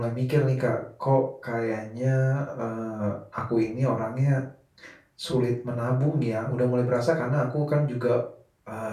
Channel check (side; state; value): both; identical; correlation 1.00